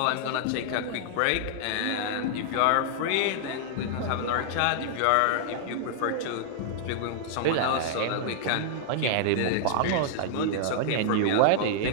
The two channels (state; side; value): different; both; correlation -0.01